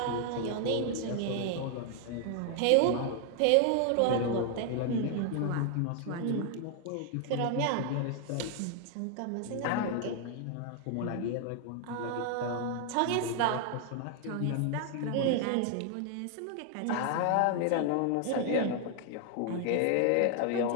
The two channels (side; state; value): both; different; correlation 0.00